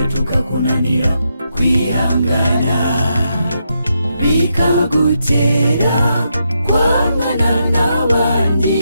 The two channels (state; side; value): inverted; both; correlation -0.82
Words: tukakunanira kwihangana bikagutera kwangana n'abandi